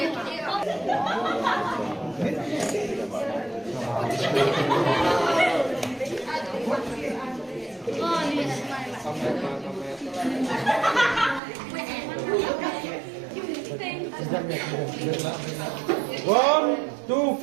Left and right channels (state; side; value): drops out; left; at 11.4 s